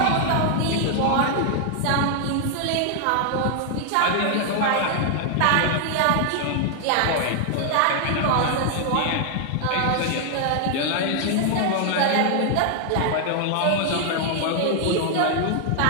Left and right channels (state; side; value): different; both; correlation 0.00